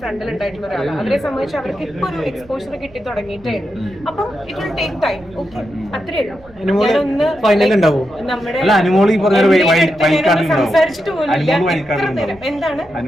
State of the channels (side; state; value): right; noise; rumble, 25 dB below the sound